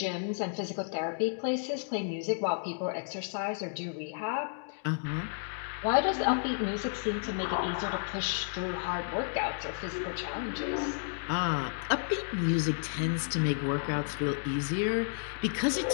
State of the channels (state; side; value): silent; right; digital silence